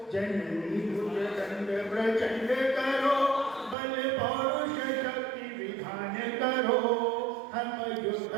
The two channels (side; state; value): left; drops out; at 3.8 s